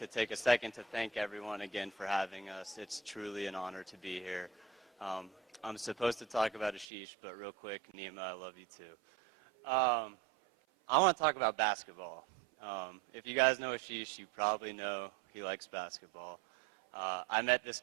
take a second to thank everyone again for having us. It's truly an honor to be here. I'm supposed to talk about aSHish, but real quick, NeeMa, I love you too. I want to talk about basketball. If you guys know aSHish, you probably know he likes basketball. I met this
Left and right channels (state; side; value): drops out; left; at 6.9 s